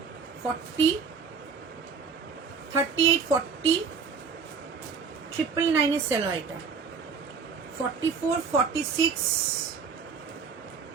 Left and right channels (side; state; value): left; quieter; 5.7 dB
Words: 40, 38, 40, 999 এর সেল হয় এটা। 44, 46,